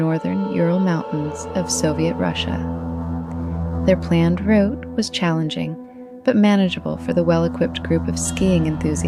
Ural Mountains of Soviet Russia. Their planned route was challenging, but manageable for the well-equipped group of skiing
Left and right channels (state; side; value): identical; both; correlation 1.00